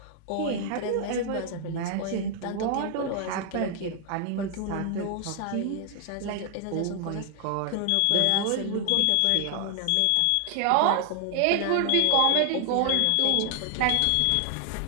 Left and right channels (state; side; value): different; both; correlation 0.00